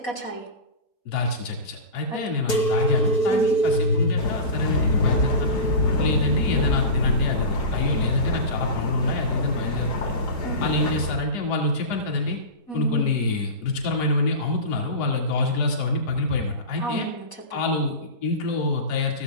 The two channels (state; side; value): late; right; 4.5 ms